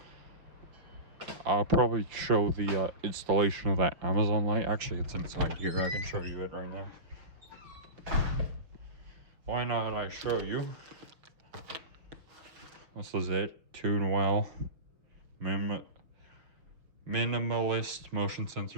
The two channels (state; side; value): late; left; 6.0 ms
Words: I'll probably show the installation of that Amazon light. Actually, it's inside here. I can show you it right now. Why not I show you? This is it. Tune well. Minimalist motion